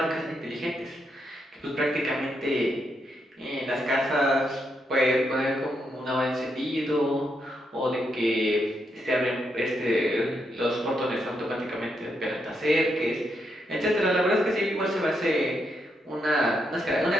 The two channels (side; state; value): both; normal; correlation 0.80